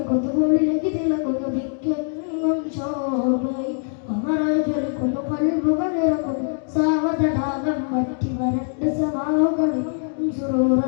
തിളങ്ങുന്നു ദിക്കെങ്ങും ശോഭയും അമരായി ജ്വലിക്കുന്നു കൽബുകൾ ഇറക്കുന്നു സാവതടാകം മറ്റി വരണ്ട സമാവുകളും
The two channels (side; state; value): right; silent; 63 dB below the other